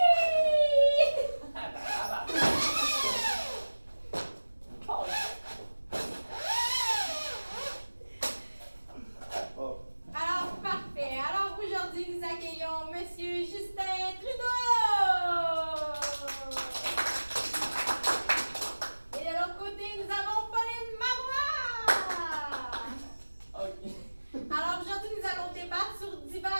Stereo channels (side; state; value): both; inverted; correlation -1.00